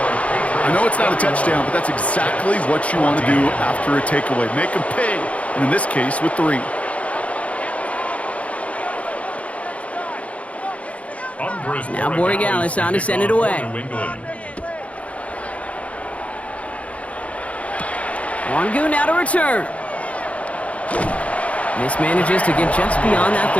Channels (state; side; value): late; right; 0.065 ms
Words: I know it's not a touchdown, but that's exactly what you want to do after a takeaway. Make them pay, and in this case, with 3. Now Borregalis on to send it away. Wangu now to return. Mismanages to get just beyond that